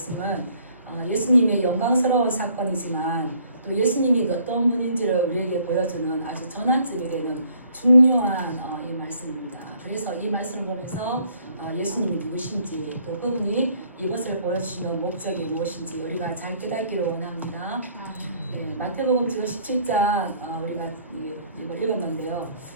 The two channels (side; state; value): both; inverted; correlation -0.62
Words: 예수님의 영광스러운 사건이지만 또 예수님이 어떤 분인지를 우리에게 보여주는 아주 전환점이 되는 중요한 이 말씀입니다. 그래서 이 말씀을 보면서 예수님이 누구신지 또 그분이 이것을 보여주시는 목적이 무엇인지 우리가 잘 깨닫기를 원합니다. 네, 마태복음 지금 17장 우리가 이걸 읽었는데요.